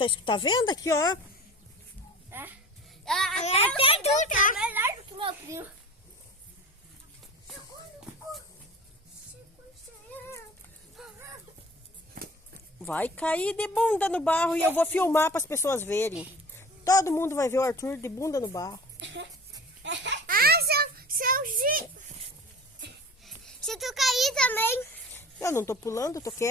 tá vendo aqui, ó. Até tu tá melhor do que meu primo. Vai cair de bunda no barro e eu vou filmar para as pessoas verem. Todo mundo vai ver o Arthur de bunda no barro. Se tu cair também, Eu não tô pulando, tô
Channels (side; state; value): both; normal; correlation 0.39